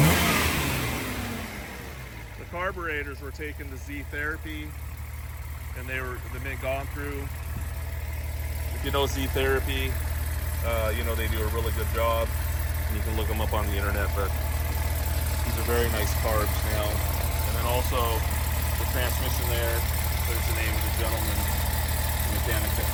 Carburetors were taken to Z Therapy, and they've been gone through. If you know Z Therapy, you know they do a really good job, and you can look them up on the internet. But these are very nice carbs now. And then also the transmission there. There's the name of the gentleman, the mechanic that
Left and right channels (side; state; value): both; identical; correlation 1.00